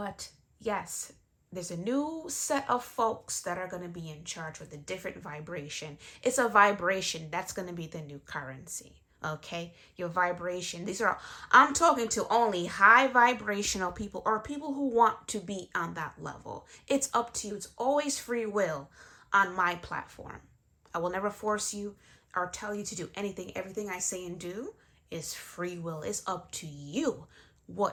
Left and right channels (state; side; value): identical; both; correlation 1.00